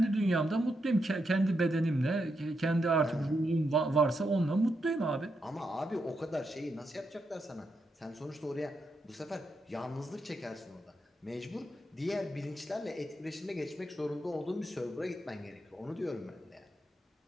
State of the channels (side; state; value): both; normal; correlation 0.83